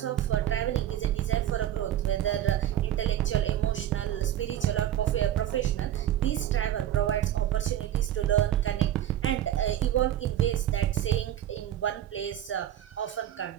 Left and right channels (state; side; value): quieter; left; 11.8 dB